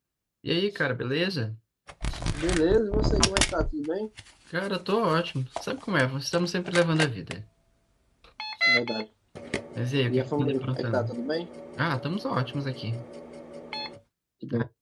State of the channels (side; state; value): both; identical; correlation 1.00